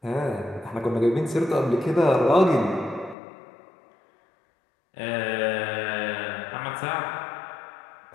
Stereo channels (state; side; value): drops out; right; at 3.2 s